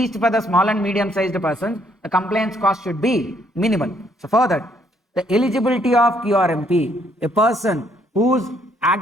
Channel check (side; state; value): both; normal; correlation 0.69